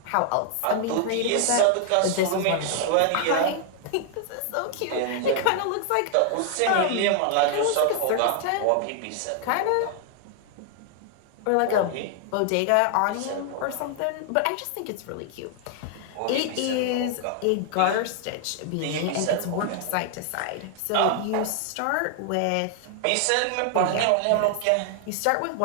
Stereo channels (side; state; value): both; different; correlation 0.00